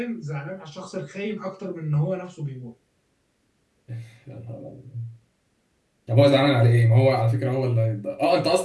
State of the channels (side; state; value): both; identical; correlation 1.00